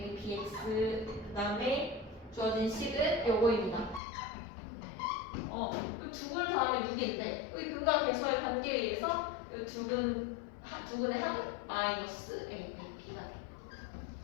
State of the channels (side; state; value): right; drops out; at 4.0 s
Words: bx 그 다음에 주어진 식은 요거입니다. 두 분을 더하면 6인데 이 근과 괴소의 관계에 의해서 두 분의 합은 마이너스 a 빼기 b가 돼.